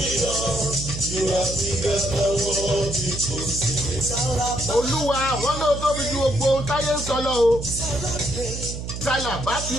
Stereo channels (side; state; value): right; noise; hum, 7 dB below the sound